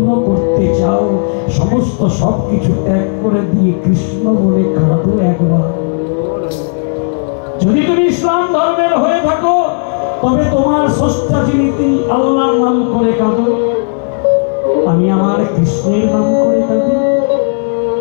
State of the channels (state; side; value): silent; right; digital silence